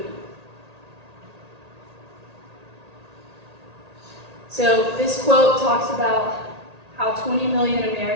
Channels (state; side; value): late; left; 1.8 ms